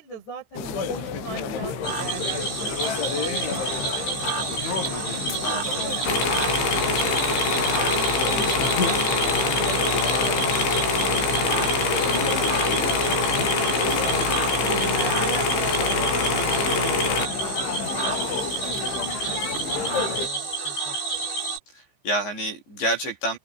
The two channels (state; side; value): late; right; 15 ms